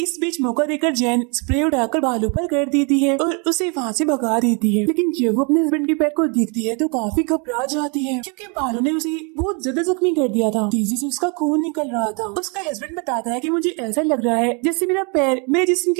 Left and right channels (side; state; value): left; quieter; 34.2 dB